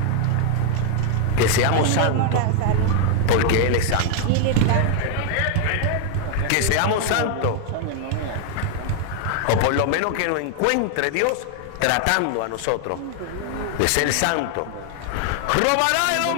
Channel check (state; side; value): different; both; correlation 0.00